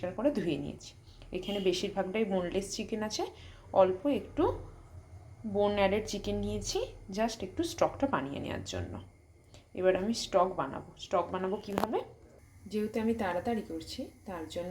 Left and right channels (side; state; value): both; identical; correlation 1.00